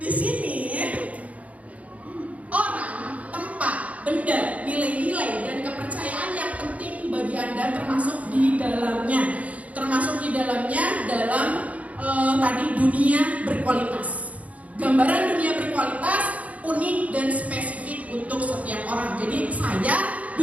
sini orang, tempat, benda, nilai-nilai dan kepercayaan yang penting bagi Anda termasuk di dalamnya dalam tadi dunia berkualitas. Gambaran dunia berkualitas unik dan spesifik untuk setiap orang. Jadi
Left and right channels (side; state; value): left; late; 0.069 ms